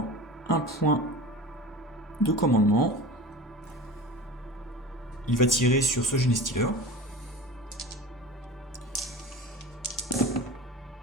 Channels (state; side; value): normal; both; correlation 0.34